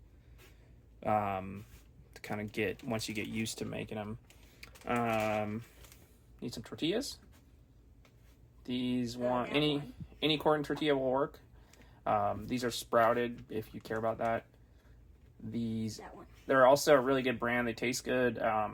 to kind of get, once you get used to making them. Need some tortillas. These any corn tortilla will work. These are sprouted if you care about that. They're also a really good brand. They taste good,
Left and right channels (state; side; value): identical; both; correlation 1.00